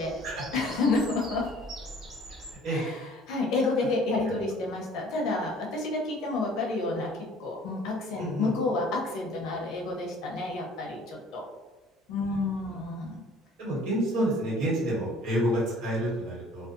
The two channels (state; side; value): normal; both; correlation 0.52